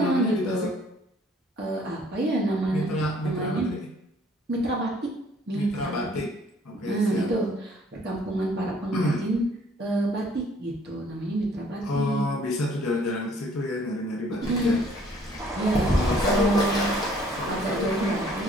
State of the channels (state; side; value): normal; both; correlation 0.59